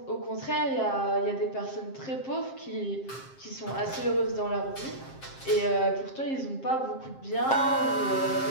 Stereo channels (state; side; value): late; right; 7.5 ms